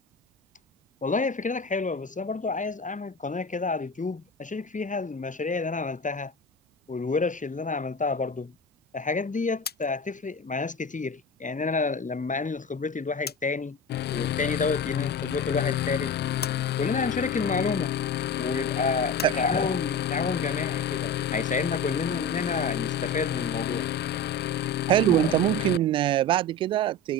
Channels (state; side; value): normal; both; correlation 0.28